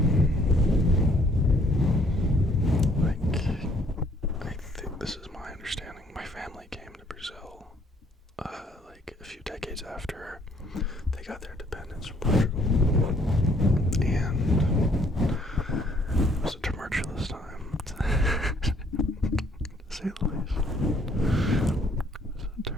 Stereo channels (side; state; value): both; normal; correlation 0.63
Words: I think this is my understanding. My family came to Brazil, like a few decades after they got their independence from Portugal, and it was a tumultuous time, to say the least. It was a